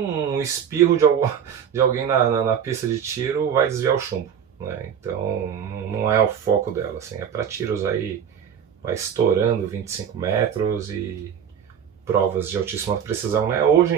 espirro de alguém na pista de tiro, vai desviar o chumbo, né? Então não é o foco dela, assim, é para tiros aí, vai estourando 25 metros e provas de altíssima precisão, né? Hoje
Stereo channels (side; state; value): left; quieter; 8.3 dB